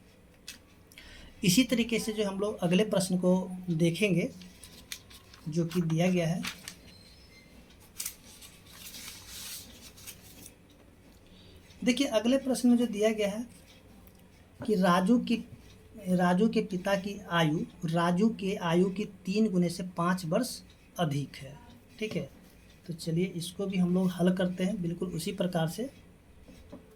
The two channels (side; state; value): both; identical; correlation 1.00